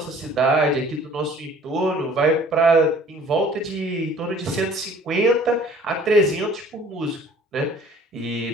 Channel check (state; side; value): normal; both; correlation 0.51